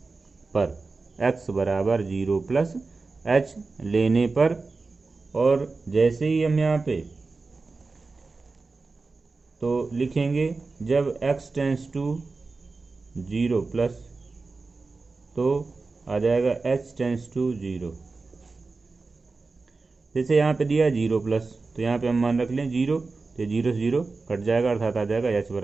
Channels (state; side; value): quieter; left; 3.9 dB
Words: पर, x बराबर 0 प्लस h लेने पर। और जैसे ही हम यहाँ पे तो लिखेंगे जब x टेंस टू 0 प्लस तो आ जाएगा h टेंस टू 0। जैसे यहाँ पे दिया 0 प्लस तो यहाँ पे हम मान रख लें 0, तो 0 से 0 कट जाएगा, अर्थात आ जाएगा h